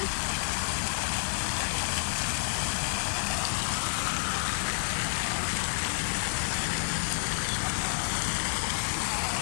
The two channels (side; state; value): right; silent; digital silence